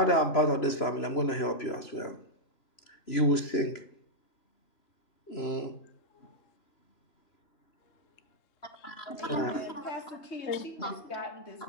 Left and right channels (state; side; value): late; right; 3.0 ms